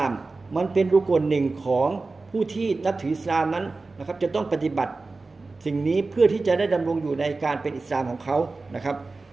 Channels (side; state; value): left; quieter; 3.7 dB